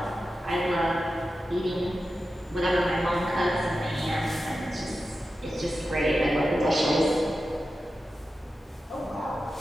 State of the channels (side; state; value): both; normal; correlation 0.92